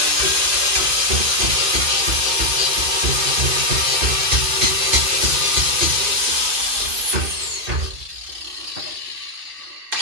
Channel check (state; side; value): late; left; 2.6 ms